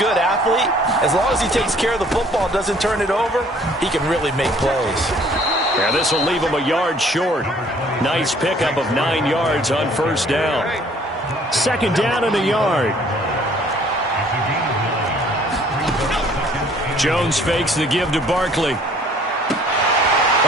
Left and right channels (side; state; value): both; normal; correlation 0.57